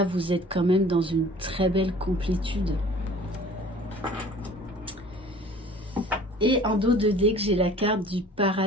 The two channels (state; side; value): normal; both; correlation 0.48